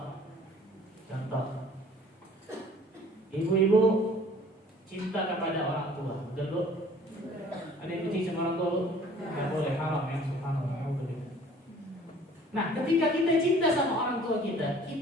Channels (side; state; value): both; normal; correlation 0.52